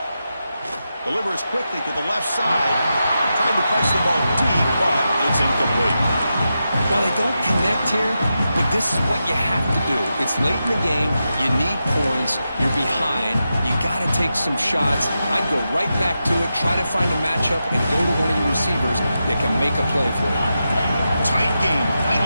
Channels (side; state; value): both; inverted; correlation -0.89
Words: Delivers quickly to the left side. Tried to press the ball deep, but it's incomplete. Well, they don't connect here, but this is what you have to do. It's late in the game. You need points. You're behind. You got to take some shots. I'd go right back to it, try to find a matchup, and go to one of your receivers that can make a play for you. Tight game.